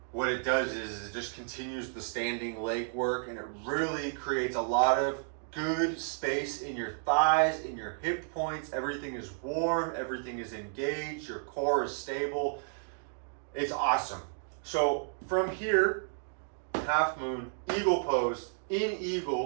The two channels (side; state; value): left; silent; digital silence